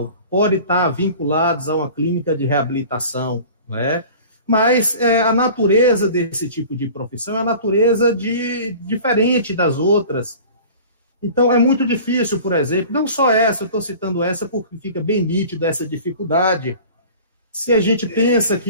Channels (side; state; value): both; inverted; correlation -0.42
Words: podem estar vinculados a uma clínica de reabilitação, né? Mas a natureza desse tipo de profissão é a natureza diferente das outras. Então, é muito difícil, por exemplo, não só essa, eu estou citando essa porque fica bem nítido essa dificuldade. Se a gente pensa